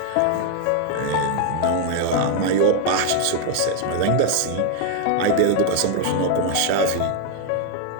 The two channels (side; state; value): both; different; correlation 0.00